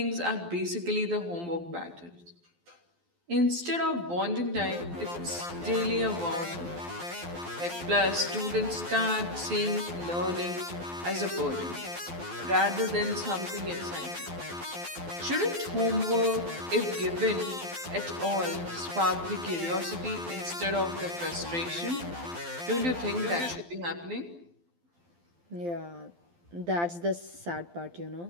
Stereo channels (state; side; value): late; left; 12 ms